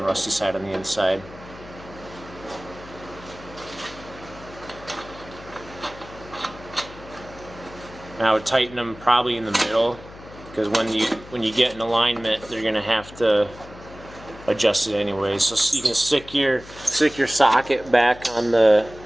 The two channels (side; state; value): left; noise; hum, 18 dB below the sound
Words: rusty side on the inside. Now I would tighten them probably in the middle, because when you get in alignment, they're gonna have to adjust it anyway. So you can stick your socket back on the